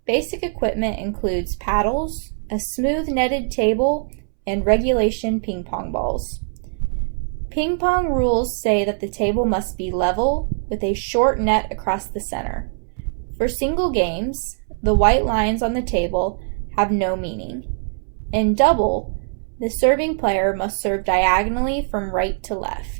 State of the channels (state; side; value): silent; left; 64 dB below the other